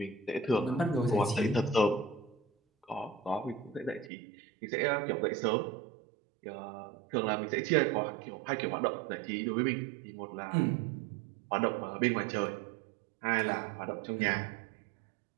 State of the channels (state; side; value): drops out; left; at 4.1 s